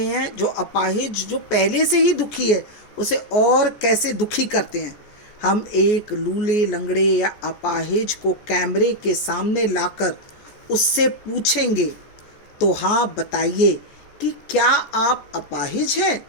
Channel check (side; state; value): right; late; 14 ms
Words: हैं, जो अपाहिज जो पहले से ही दुखी है उसे और कैसे दुखी करते हैं। हम एक लूले लंगड़े या अपाहिज को कैमरे के सामने लाकर उससे पूछेंगे तो हाँ बताइए कि क्या आप अपाहिज हैं?